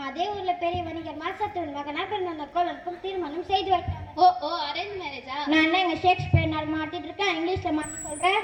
அதே ஊர்ல பெரிய வணிகர் மாசத்துவன் மகனா பிறந்த அந்த கோலனுக்கும் திருமணம் செய்து வைத்தாங்க. ஓ அரேஞ்ச் மேரேஜா? நான் எங்க ஷேக்ஸ்பியர் நாள் மாத்திட்டு இருக்கேன், இங்கிலீஷ்ல மாத்தி சொல்றேன்,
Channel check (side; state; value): both; identical; correlation 1.00